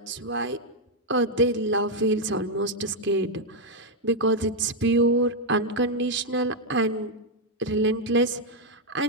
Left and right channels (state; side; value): normal; both; correlation 0.00